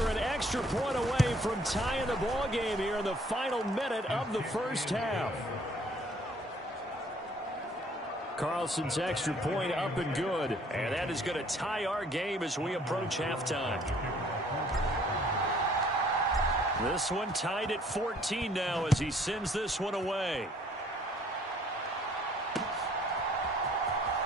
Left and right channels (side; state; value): both; normal; correlation 0.59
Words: an extra point away from tying the ball game here in the final minute of the first half. Carlson's extra point up and good. And that is going to tie our game as we approach halftime. This one tied at 14 now as he sends this one away.